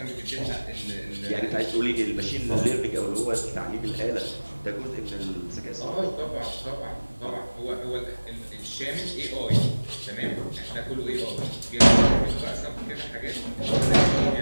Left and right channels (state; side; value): inverted; both; correlation -1.00